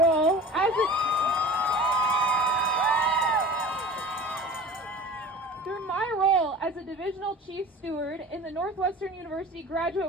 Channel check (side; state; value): both; normal; correlation 0.38